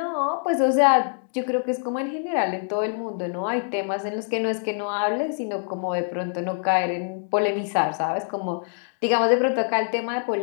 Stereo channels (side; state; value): right; silent; digital silence